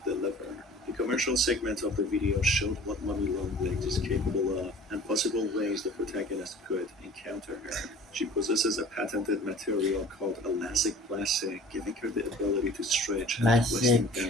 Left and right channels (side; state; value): both; normal; correlation 0.46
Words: deliver. The commercial segment of the video showed what Mummy Longlegs is capable of and possible ways the protagonist could encounter her. She possesses a patented material called elastic plastic, giving her the ability to stretch and twist in a